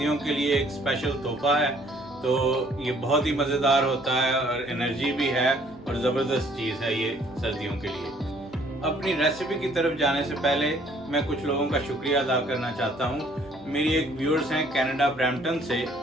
के लिए एक स्पेशल तोहफा है। तो ये बहुत ही मज़ेदार होता है और एनर्जी भी है और ज़बरदस्त चीज़ है ये सर्दियों के लिए। अपनी रेसिपी की तरफ जाने से पहले मैं कुछ लोगों का शुक्रिया अदा करना चाहता हूँ। मेरी एक व्यूअर्स हैं कनाडा ब्रैम्पटन से,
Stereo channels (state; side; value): normal; both; correlation 0.61